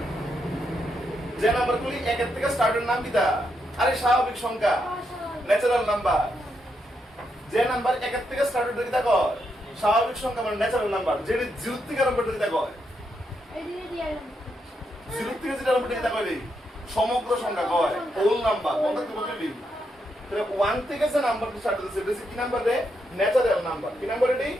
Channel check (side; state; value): both; normal; correlation 0.81